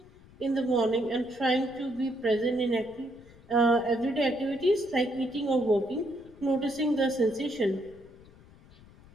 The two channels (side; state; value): left; noise; rumble, 24 dB below the sound